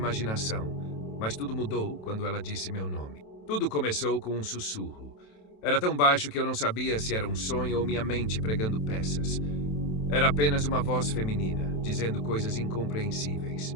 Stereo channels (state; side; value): late; right; 27 ms